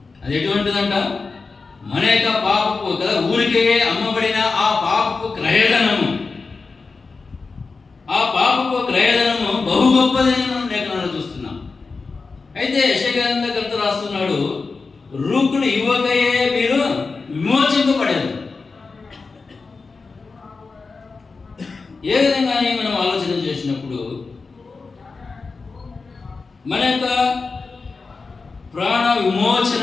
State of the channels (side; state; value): right; quieter; 4.3 dB